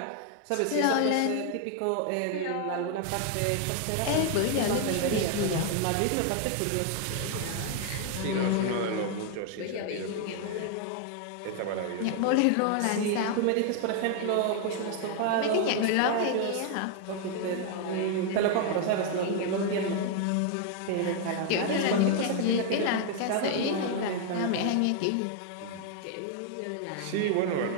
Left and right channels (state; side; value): different; both; correlation 0.00